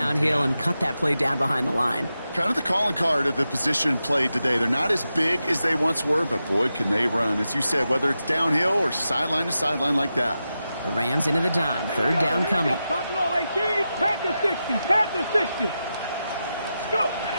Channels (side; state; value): both; inverted; correlation -0.90